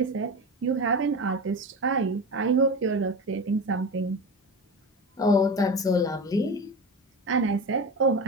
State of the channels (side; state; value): both; normal; correlation 0.26